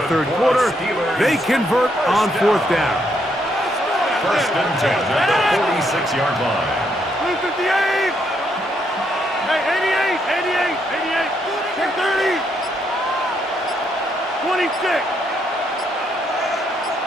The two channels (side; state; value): both; normal; correlation 0.75